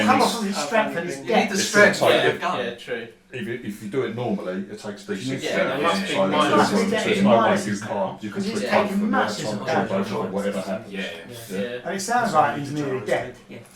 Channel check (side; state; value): both; identical; correlation 1.00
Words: come he's- off of his strength and his You need depth. the It's strength gonna to take get a gun. Yeah, true. If you do it normally, it takes decent. Yeah, there must be so minuses. there's no way you can't. You can Because he's switch taking both of them. massive That's damage. both or whatever happens. Yeah. Yeah. And it sounds like he's nearly dead. yeah,